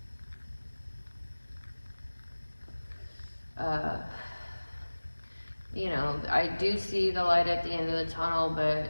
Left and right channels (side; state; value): both; inverted; correlation -1.00